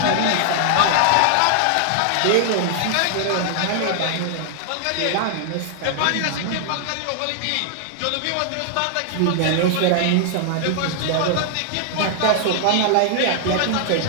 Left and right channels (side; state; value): both; different; correlation 0.00